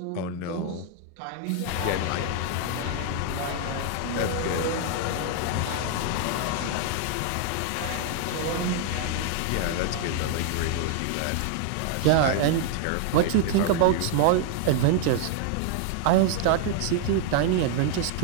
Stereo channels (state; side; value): different; both; correlation 0.00